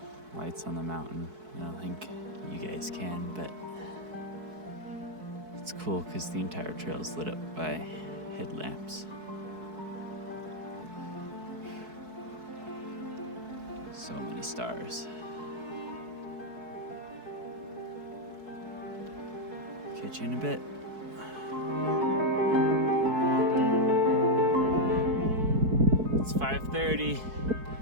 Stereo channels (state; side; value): late; left; 4.6 ms